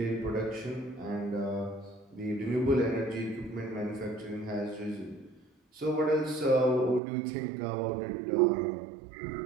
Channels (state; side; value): drops out; left; at 7.0 s